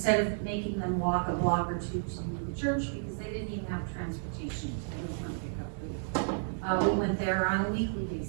of making them walk a block or two to the church because they didn't even have transportation to go and pick up food. We went there on a weekly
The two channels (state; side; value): silent; left; digital silence